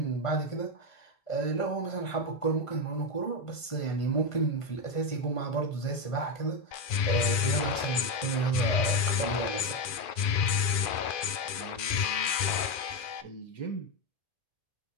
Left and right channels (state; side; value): late; right; 2.4 ms